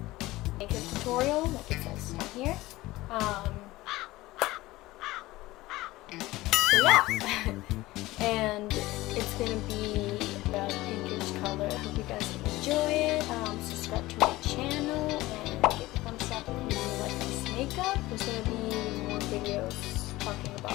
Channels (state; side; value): quieter; right; 18.5 dB